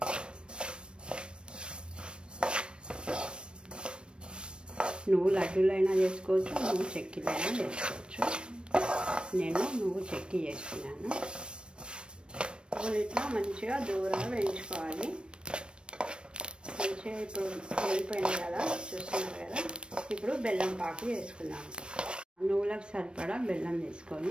నువ్వు లడ్డూలైనా చేసుకోవచ్చు, నువ్వు చెక్కీలైనా చేసుకోవచ్చు. నేను నువ్వు చెక్కీ చేస్తున్నాను. నువ్వులు ఇట్లా మంచిగా దూరంగా వేయించుకోవాలి. మంచిగా ఇప్పుడు వేగిపోయింది కదా, చూస్తున్నారు కదా. ఇప్పుడు బెల్లం పాకు వేసుకున్నాము. నువ్వులకు సరిపడా బెల్లం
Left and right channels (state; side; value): late; left; 0.056 ms